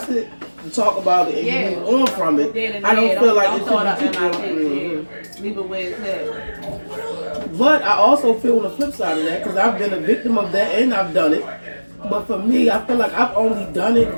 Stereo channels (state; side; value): inverted; both; correlation -1.00